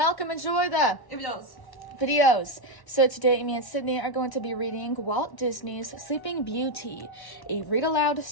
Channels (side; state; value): right; late; 1.1 ms